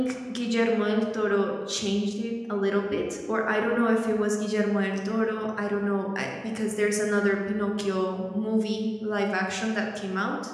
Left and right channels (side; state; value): both; identical; correlation 1.00